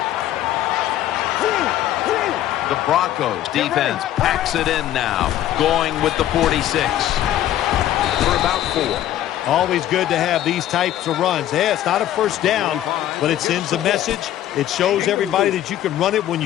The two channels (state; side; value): quieter; right; 12.6 dB